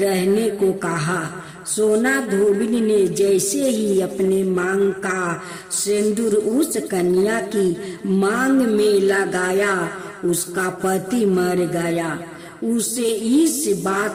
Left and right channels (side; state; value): both; identical; correlation 1.00